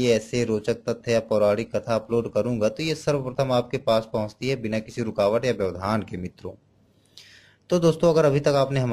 ऐसे रोचक तथ्य या पौराणिक कथा अपलोड करूंगा तो ये सर्वप्रथम आपके पास पहुंचती है बिना किसी रुकावट या व्यवधान के मित्रों। तो दोस्तों, अगर अभी तक आपने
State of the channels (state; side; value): identical; both; correlation 1.00